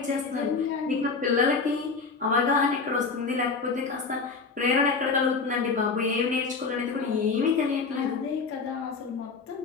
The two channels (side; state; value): right; quieter; 4.7 dB